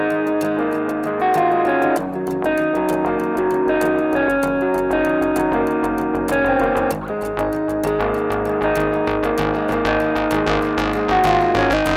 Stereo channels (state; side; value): identical; both; correlation 1.00